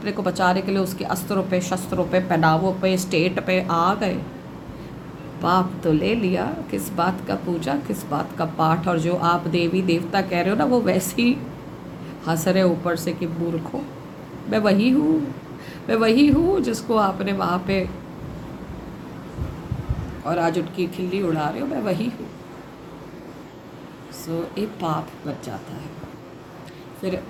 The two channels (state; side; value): identical; both; correlation 1.00